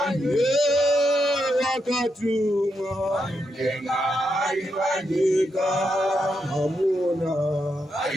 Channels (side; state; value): both; normal; correlation 0.83